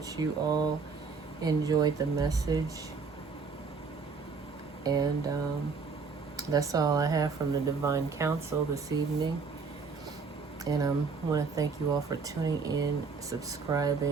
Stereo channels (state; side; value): quieter; left; 5.0 dB